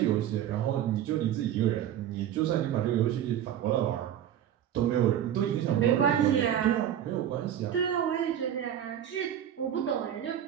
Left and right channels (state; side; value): quieter; left; 10.5 dB